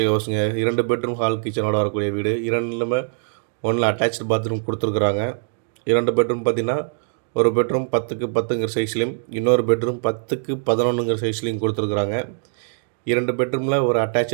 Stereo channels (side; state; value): left; silent; digital silence